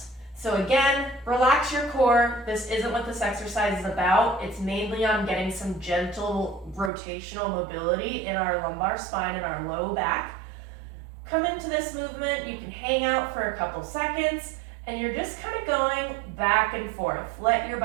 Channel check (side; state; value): left; drops out; at 6.9 s